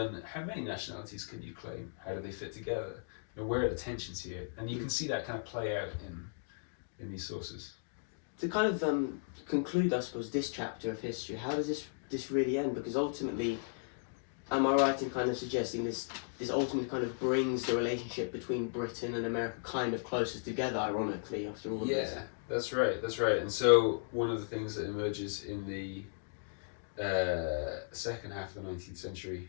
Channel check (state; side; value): silent; right; digital silence